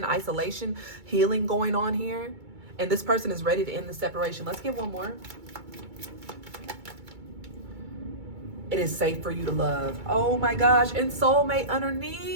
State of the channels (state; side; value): late; left; 2.3 ms